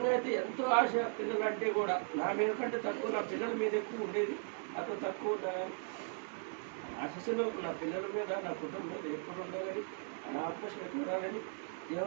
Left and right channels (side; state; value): left; silent; 53 dB below the other